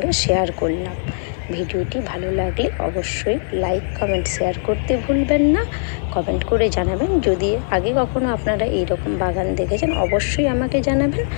শেয়ার করলাম। ভিডিওটি ভালো লাগলে অবশ্যই লাইক, কমেন্ট, শেয়ার করতে ভুলবেন না। কমেন্ট করে জানাবেন, যদি আগে কখনো আপনারা এইরকম বাগান দেখেছেন অবশ্যই আমাকে জানাবেন।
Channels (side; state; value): right; silent; 57 dB below the other